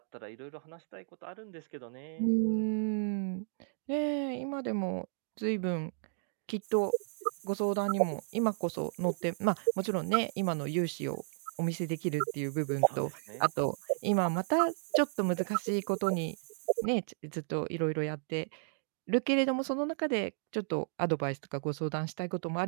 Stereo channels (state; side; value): silent; left; digital silence